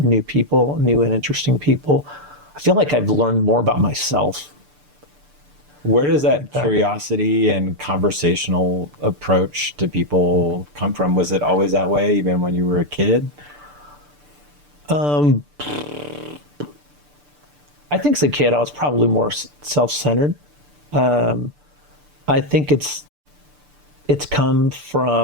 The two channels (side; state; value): left; late; 6.8 ms